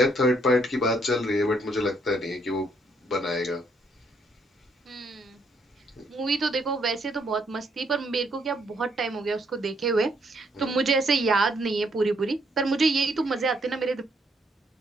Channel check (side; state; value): both; normal; correlation 0.71